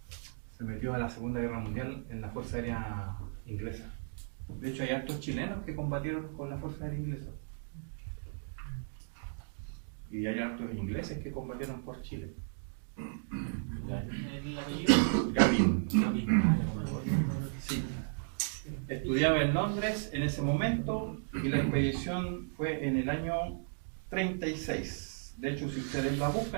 se metió a la Segunda Guerra Mundial en la Fuerza Aérea Inglesa. De hecho, hay hartos chilenos que combatieron con la Fuerza Aérea Inglesa. Y hay hartos ingleses que combatieron por Chile. ¿El apellido? Gavin. Sí. Estudiaba en Londres en ese momento y la expedición fue en el año 36. De hecho, si ustedes la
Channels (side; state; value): left; silent; digital silence